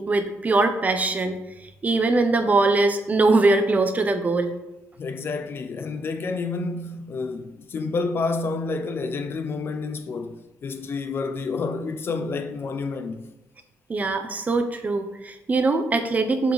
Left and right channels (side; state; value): both; normal; correlation 0.77